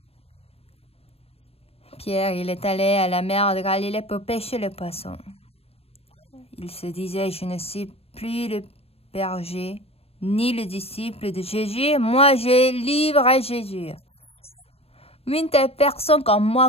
Pierre, il est allé à la mer de Galilée pour pêcher le poisson. Il se disait, je ne suis plus le berger, ni le disciple de Jésus. Moi, je livre à Jésus. Une telle personne comme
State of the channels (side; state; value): right; late; 0.29 ms